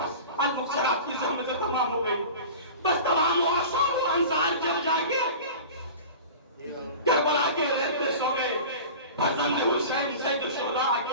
المکسرات کی زحمت تمام ہو گئی. بس تمام معاشر و انصار جب جا کے کربلا کے ریت پہ سو گئے فرزند حسین سید الشہداء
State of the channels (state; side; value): inverted; both; correlation -0.36